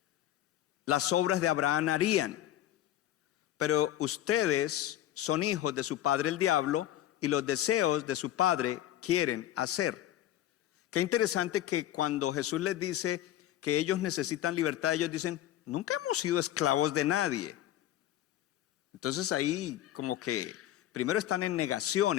las obras de Abraham harían. Pero ustedes son hijos de su padre el diablo, y los deseos de su padre quieren hacer. Qué interesante que cuando Jesús les dice que ellos necesitan libertad, ellos dicen: nunca hemos sido esclavos de nadie. Entonces ahí como que primero están en negación,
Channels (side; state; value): right; quieter; 12.7 dB